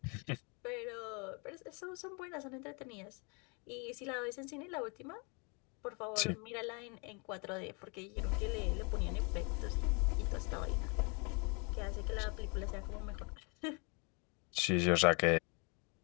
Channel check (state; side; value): quieter; right; 32.7 dB